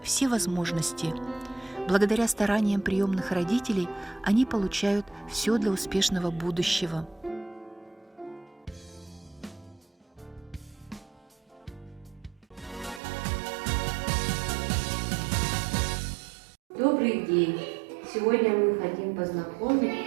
все возможности. Благодаря стараниям приемных родителей они получают все для успешного будущего. Добрый день! Сегодня мы хотим познакомить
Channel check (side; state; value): left; drops out; at 13.0 s